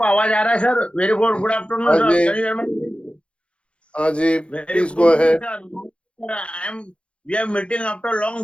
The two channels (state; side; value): late; right; 0.059 ms